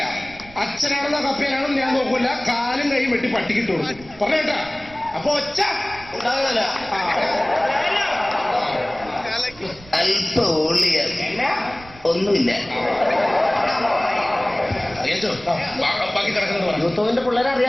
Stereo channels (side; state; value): right; noise; rumble, 21 dB below the sound